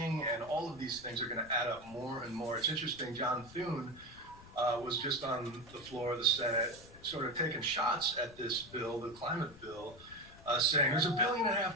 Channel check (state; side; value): noise; left; rumble, 20 dB below the sound